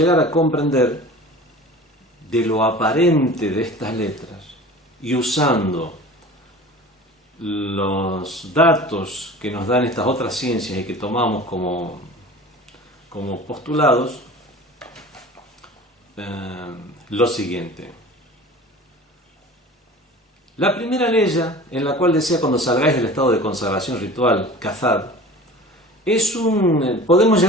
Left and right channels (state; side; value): normal; both; correlation 0.40